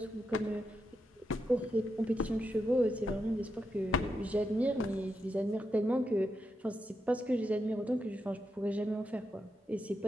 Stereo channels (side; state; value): both; normal; correlation 0.85